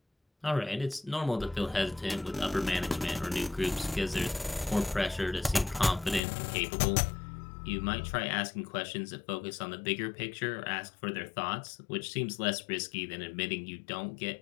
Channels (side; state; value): right; drops out; at 6.2 s